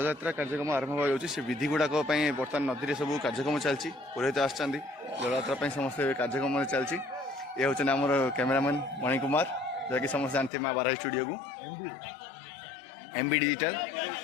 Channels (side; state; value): right; drops out; at 10.5 s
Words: कार्यक्रम आरंभ हो से विधि गुड़ाक बर्तमान नदी में सब कार्यक्रम चलती पुरोहित आसछन्ति जलयात्रा समस्त कार्यक्रम चलती। ये हूँ आमर कैमेरामैन मणिकुमार जहाँकि समस्त जानते माँ बाराही स्टूडियो को एमबी डिजिटल